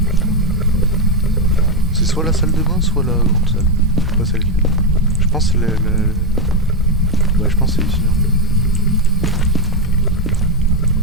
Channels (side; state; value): both; normal; correlation 0.06